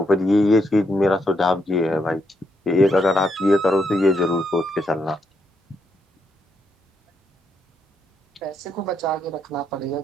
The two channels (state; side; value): normal; both; correlation 0.78